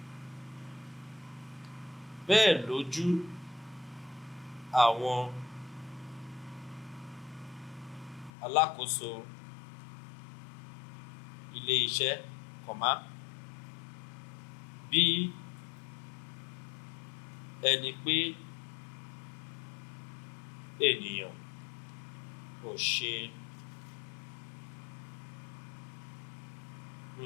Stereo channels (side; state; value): right; drops out; at 8.3 s